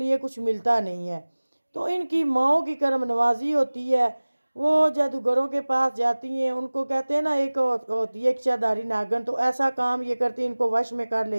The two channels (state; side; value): inverted; both; correlation -1.00